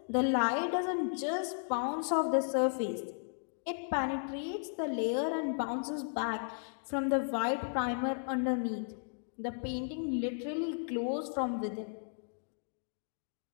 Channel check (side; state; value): right; silent; digital silence